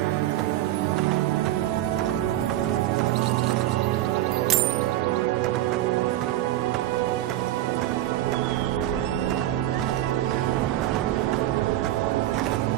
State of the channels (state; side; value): quieter; left; 14.1 dB